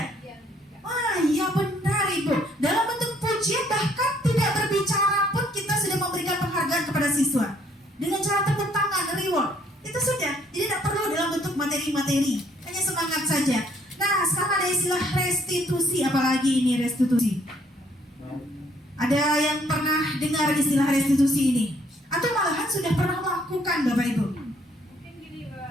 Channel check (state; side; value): normal; both; correlation 0.65